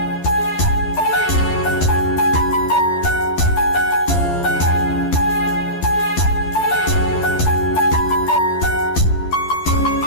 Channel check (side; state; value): right; late; 11 ms